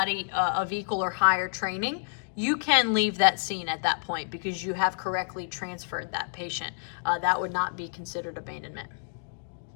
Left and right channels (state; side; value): silent; right; digital silence